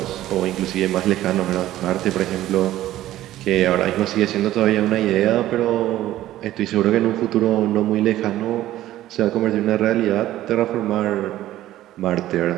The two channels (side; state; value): left; quieter; 14.2 dB